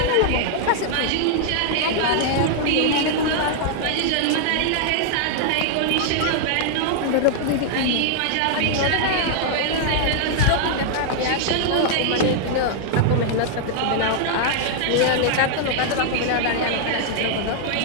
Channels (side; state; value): both; different; correlation 0.00